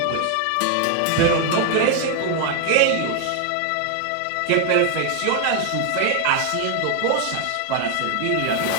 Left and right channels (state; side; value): different; both; correlation 0.00